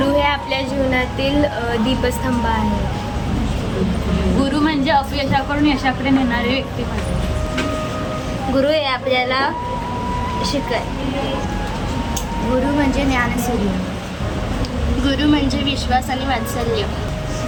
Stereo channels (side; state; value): both; identical; correlation 1.00